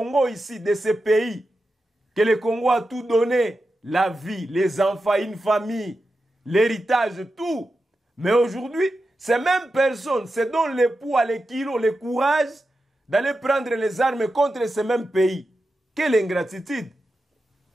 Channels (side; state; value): both; normal; correlation 0.90